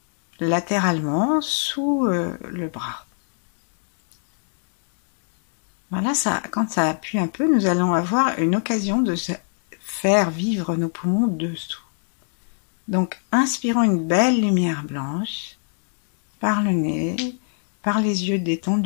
latéralement sous le bras. Voilà, ça, quand ça appuie un peu, nous allons avoir une occasion de faire vivre nos poumons dessous. Donc, inspirons une belle lumière blanche par le nez, par les yeux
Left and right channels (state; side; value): silent; right; 64 dB below the other